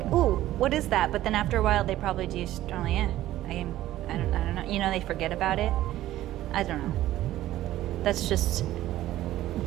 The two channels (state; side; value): quieter; left; 14.4 dB